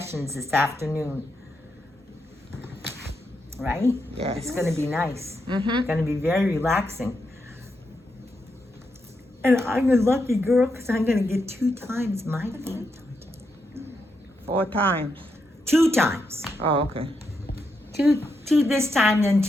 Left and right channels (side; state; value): both; normal; correlation 0.83